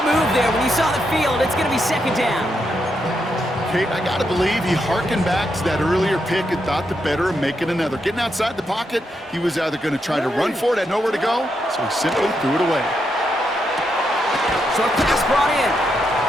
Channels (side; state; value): both; normal; correlation 0.81